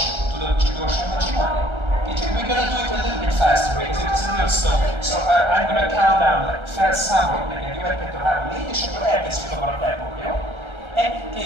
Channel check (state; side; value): late; left; 1.3 ms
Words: tudod, csak gyorsabban csinálni? Kicsit, we're gonna do it a little bit faster, because it's a little slow. So I'm gonna count down, like, felszámolok neked, jó, 1, 2, 3, 4, és akkor elkezdjük abban a tempót, jó? 1,